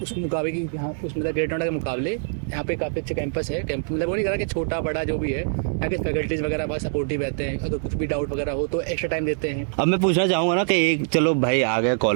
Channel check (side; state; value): left; silent; digital silence